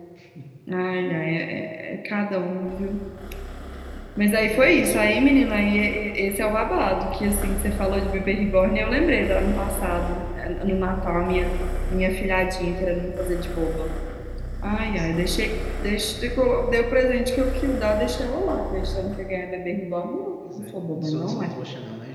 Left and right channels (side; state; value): both; identical; correlation 1.00